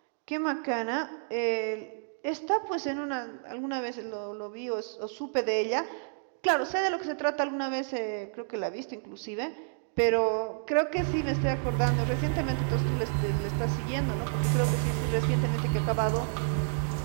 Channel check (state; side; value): silent; left; digital silence